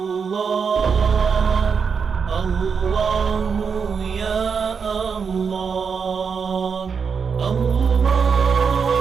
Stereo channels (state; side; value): quieter; left; 6.0 dB